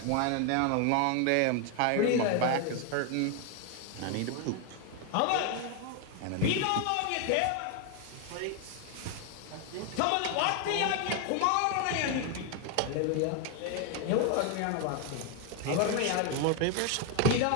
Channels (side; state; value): both; different; correlation 0.01